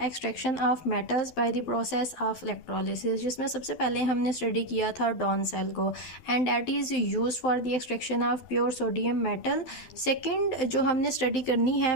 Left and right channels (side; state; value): right; late; 12 ms